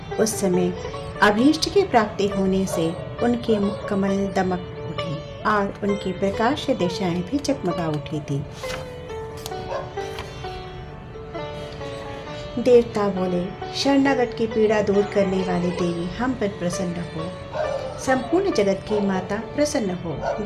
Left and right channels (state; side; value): identical; both; correlation 1.00